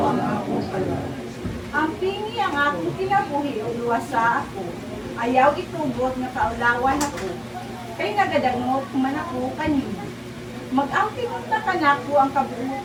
ang akong pala. Ang pingi ang akong kinabuhi o luwasa ako. Ayaw itugot na kaulawan ako. Kay nagadangot man ako kanina. Mag-ampingot na kanako ang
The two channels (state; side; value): identical; both; correlation 1.00